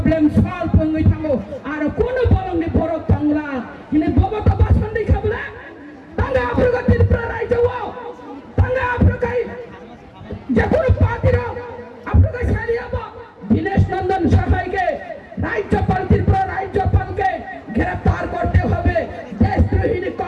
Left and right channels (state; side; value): identical; both; correlation 1.00